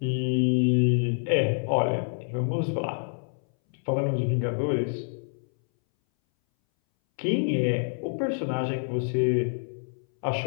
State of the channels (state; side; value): silent; right; 60 dB below the other